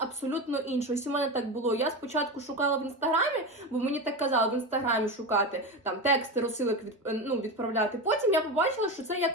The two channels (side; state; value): both; normal; correlation 0.21